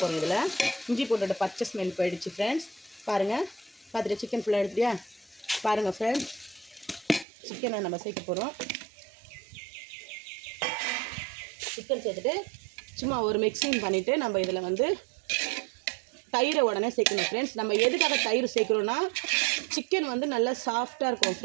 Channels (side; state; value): left; drops out; at 7.2 s